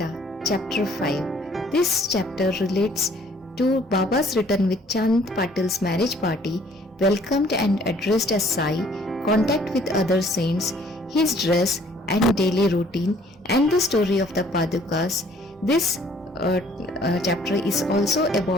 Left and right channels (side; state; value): both; normal; correlation 0.59